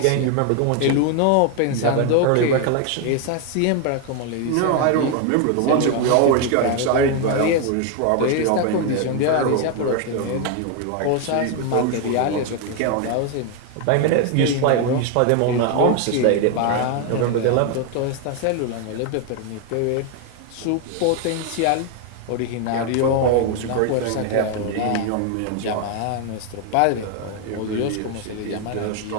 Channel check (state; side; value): different; both; correlation 0.01